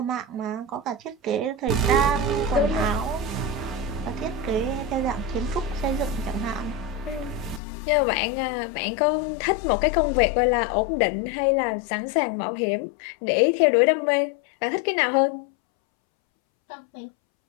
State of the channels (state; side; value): drops out; right; at 7.6 s